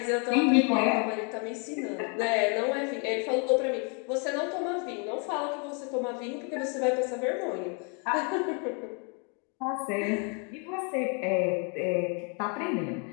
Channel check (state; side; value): quieter; right; 36.6 dB